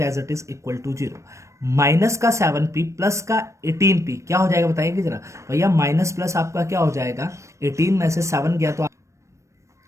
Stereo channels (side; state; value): left; late; 0.15 ms